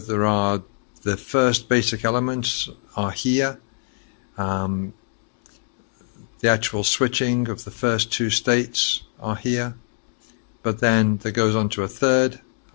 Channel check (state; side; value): silent; right; digital silence